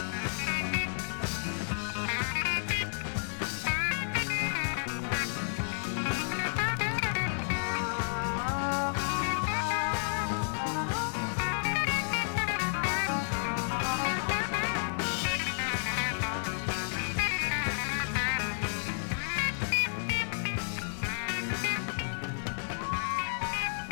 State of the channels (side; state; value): right; silent; 57 dB below the other